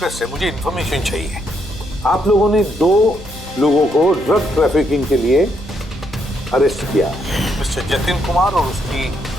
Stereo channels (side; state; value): both; normal; correlation 0.75